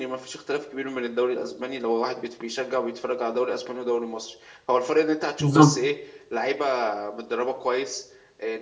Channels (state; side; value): identical; both; correlation 1.00